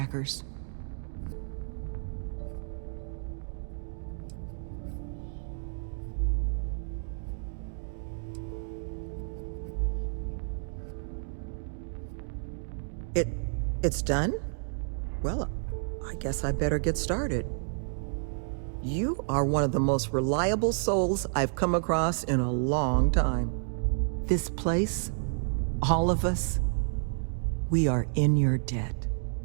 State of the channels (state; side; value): silent; left; digital silence